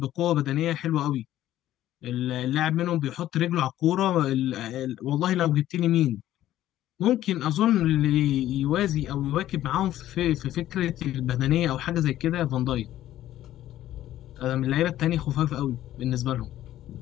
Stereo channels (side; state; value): right; quieter; 13.3 dB